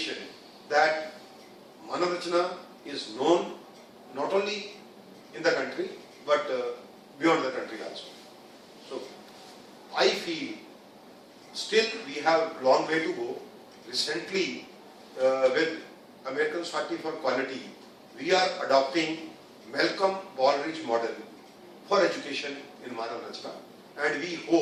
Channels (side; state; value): both; identical; correlation 1.00